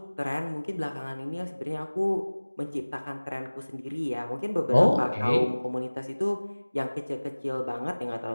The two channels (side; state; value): both; inverted; correlation -1.00